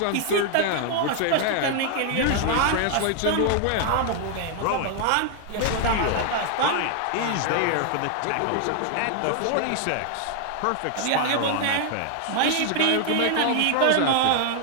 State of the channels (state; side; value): different; both; correlation 0.00